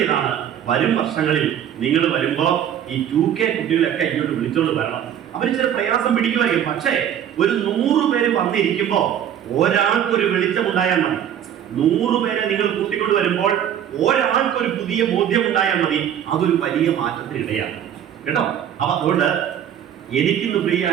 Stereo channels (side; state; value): left; quieter; 9.8 dB